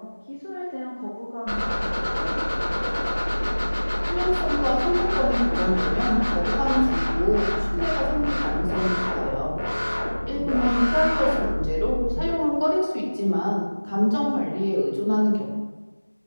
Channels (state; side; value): inverted; both; correlation -1.00